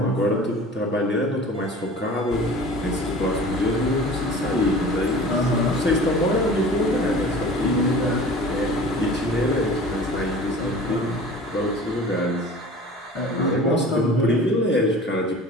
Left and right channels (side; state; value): both; normal; correlation 0.41